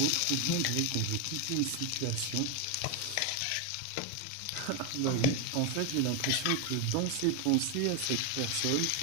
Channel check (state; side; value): different; both; correlation 0.01